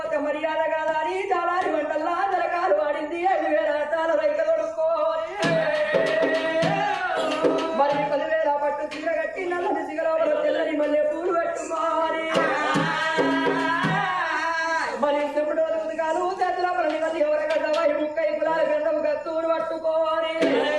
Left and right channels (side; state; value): left; noise; rumble, 30 dB below the sound